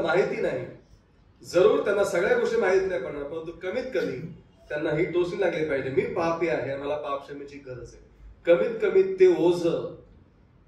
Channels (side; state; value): both; identical; correlation 1.00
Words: माहिती नाही. जरूर त्यांना सगळ्या गोष्टी माहित नाही पडणार, परंतु कमीत कमी त्यांना ही टोचणी लागली पाहिजे, मी पापी आहे, मला पापक्षमेची गरज आहे. कमीत कमी ते ओझ,